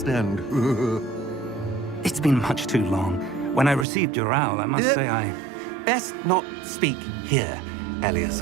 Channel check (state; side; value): drops out; left; at 3.9 s